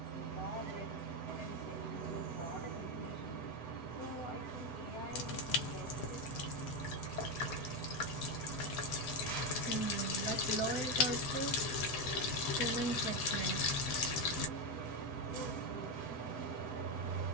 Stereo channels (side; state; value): right; late; 7.9 ms